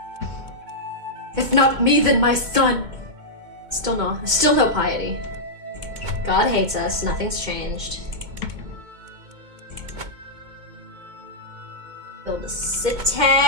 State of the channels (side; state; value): left; late; 2.2 ms